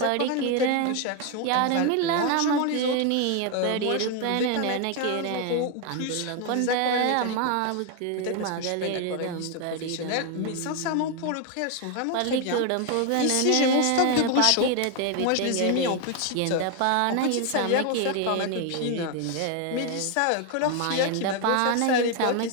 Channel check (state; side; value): different; both; correlation 0.01